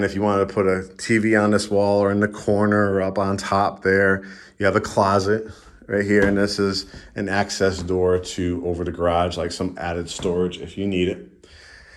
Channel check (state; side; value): identical; both; correlation 1.00